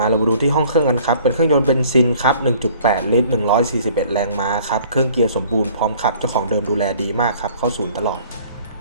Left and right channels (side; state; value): both; inverted; correlation -0.54